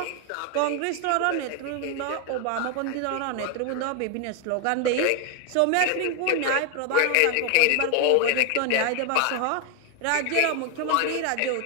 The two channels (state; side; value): different; both; correlation 0.01